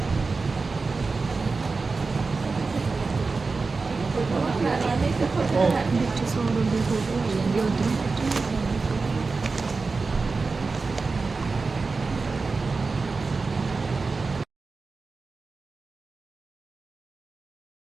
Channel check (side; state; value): left; quieter; 4.2 dB